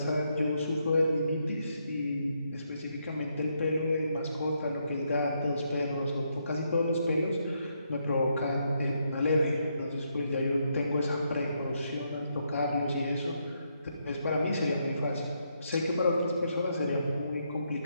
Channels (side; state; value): both; inverted; correlation -0.78